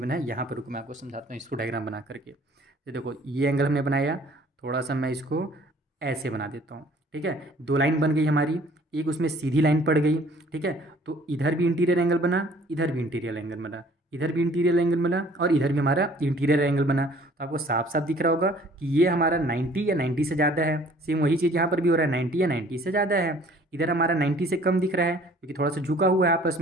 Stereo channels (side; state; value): both; normal; correlation 0.54